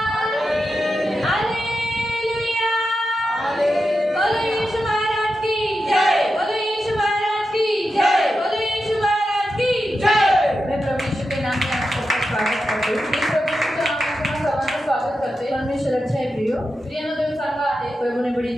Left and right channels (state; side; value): normal; both; correlation 0.89